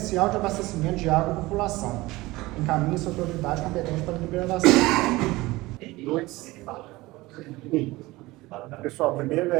de abastecimento de água à população. Encaminhe-se a autoridade competente para a deliberação. Pessoal, primeiro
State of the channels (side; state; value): left; quieter; 20.0 dB